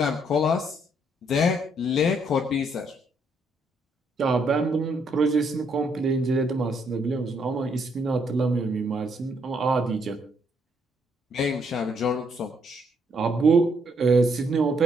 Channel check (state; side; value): normal; both; correlation 0.72